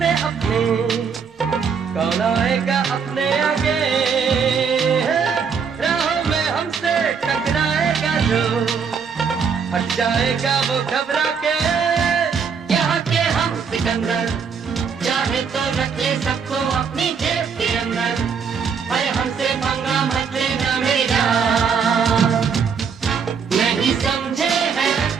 अपने, कौन आएगा अपने आगे, राहों में हमसे टकराएगा जो हट जाएगा वो घबरा के। यहाँ के हम सिकंदर चाहे तो रख ले सबको अपनी जेब के अंदर, पर हमसे पंगा मत लेना मेरी जान। नहीं समझे हैं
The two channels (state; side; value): quieter; left; 6.2 dB